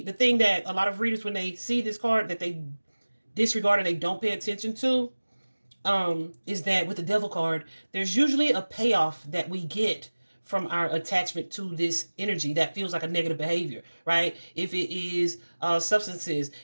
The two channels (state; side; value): inverted; both; correlation -1.00